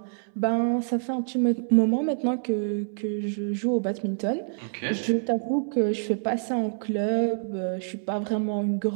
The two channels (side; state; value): left; silent; 60 dB below the other